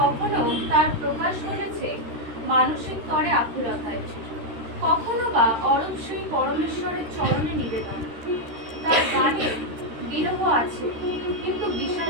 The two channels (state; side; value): late; left; 13 ms